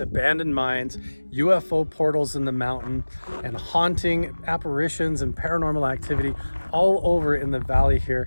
mines, UFO portals in the mountain, and haunting apparitions and paranormal activity all over in the valley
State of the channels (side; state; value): both; inverted; correlation -1.00